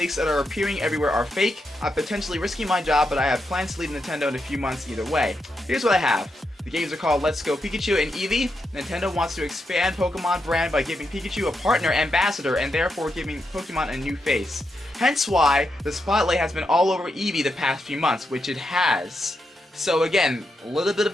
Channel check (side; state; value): both; normal; correlation 0.84